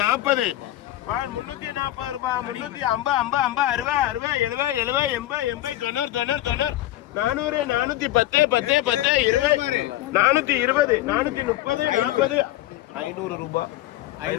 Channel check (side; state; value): right; quieter; 15.0 dB